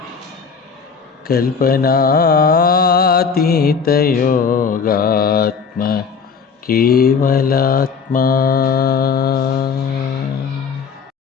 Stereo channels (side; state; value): right; quieter; 5.8 dB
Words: కల్పనాతీత యోగాత్మ కేవలాత్మా.